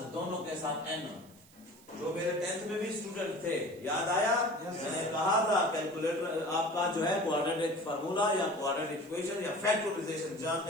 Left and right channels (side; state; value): right; noise; hiss, 25 dB below the sound